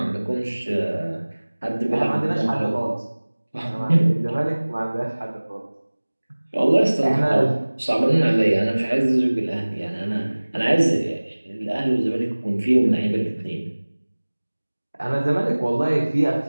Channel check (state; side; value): inverted; both; correlation -1.00